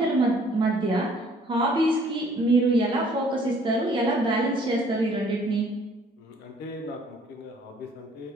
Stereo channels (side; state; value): both; normal; correlation 0.59